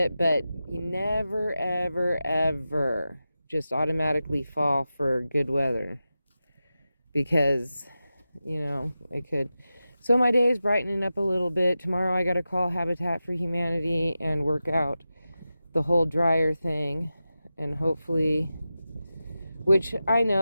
But you never, ever, ever just automatically fall for good weather. Because, it could. So my day is brightening up a little bit. Tomorrow I got to call Habitat for Humanity and work out the whole dryer thing. And hopefully, which I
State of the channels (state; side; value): inverted; both; correlation -0.92